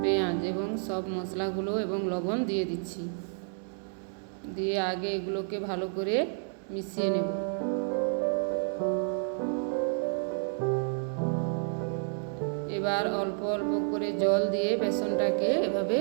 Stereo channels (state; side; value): silent; left; 58 dB below the other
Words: পেঁয়াজ এবং সব মশলাগুলো এবং লবণ দিয়ে দিচ্ছি। দিয়ে আগে এগুলোকে ভালো করে মিশিয়ে নেব। এবার অল্প অল্প করে জল দিয়ে বেসনটাকে এভাবে